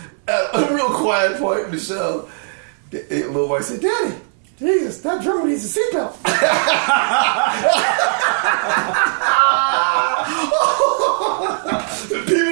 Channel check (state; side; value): silent; left; digital silence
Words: at a real quiet point in the show, the little boy said, Daddy, Jesus, that drummer needs a seatbelt.